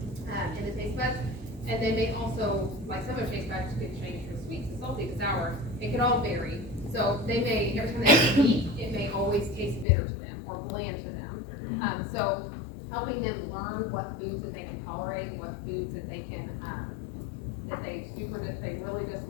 in the taste buds. And they may also, like some of their taste buds could change from sweet to salty to sour. It could all vary. So they may, every time they eat, it may always taste bitter to them or bland to them. So helping them learn what foods that they can tolerate, what foods that they can, that they really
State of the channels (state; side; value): drops out; right; at 9.9 s